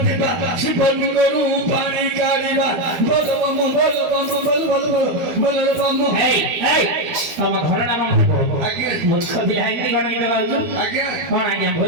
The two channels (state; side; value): late; left; 12 ms